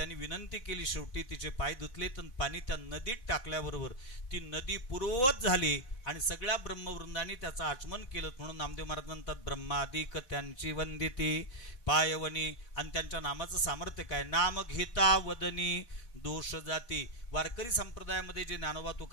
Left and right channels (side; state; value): right; late; 4.0 ms